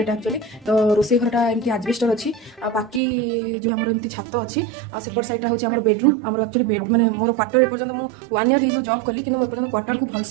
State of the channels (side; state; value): left; drops out; at 3.0 s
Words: एक्चुअली। तो रोसे घरटा एमती आजबेस्टर अच्छी बाकी जो आम एमती छात अच्छी सेपट साइड हूँ आम बेडरूम आम एक्चुअली बेड मैंने मोर क्वार्टर एपर्तन मुझे 1 ईयर हो जॉब कली कि एपर्तन क्वार्टर को